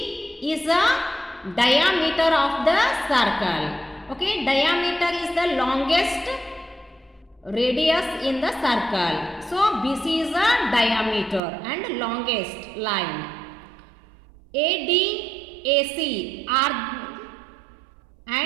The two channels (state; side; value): drops out; left; at 11.4 s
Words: is the diameter of the circle. Okay, diameter is the longest radius in the circle. So BC is the diameter and longest line. AD, AC are